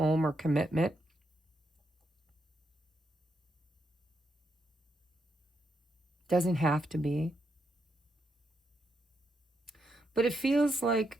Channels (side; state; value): both; normal; correlation 0.81